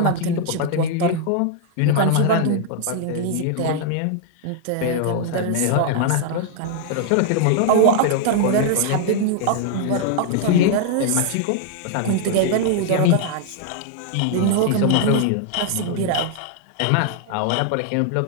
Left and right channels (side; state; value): both; different; correlation 0.00